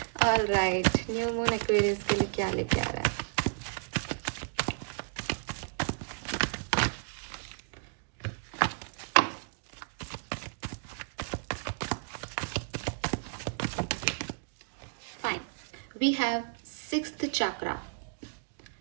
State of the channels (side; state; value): left; silent; digital silence